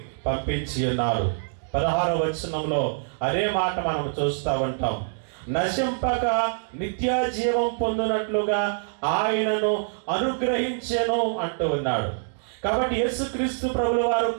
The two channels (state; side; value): silent; left; digital silence